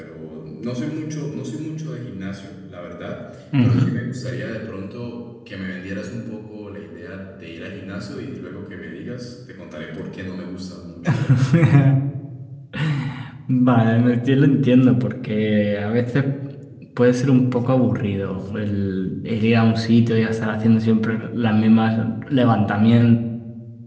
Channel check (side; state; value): both; identical; correlation 1.00